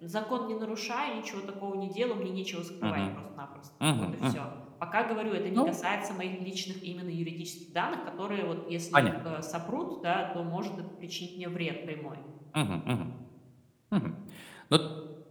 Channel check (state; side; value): identical; both; correlation 1.00